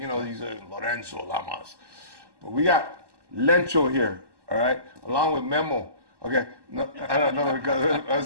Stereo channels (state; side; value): late; left; 1.2 ms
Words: are Lorenzo Lamas. But we got Lencho here, all right, along with Memo. Okay, no, I don't know, because I